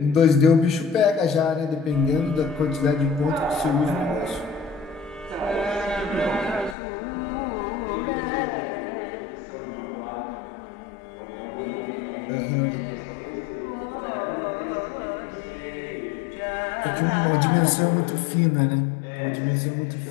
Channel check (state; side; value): drops out; right; at 6.8 s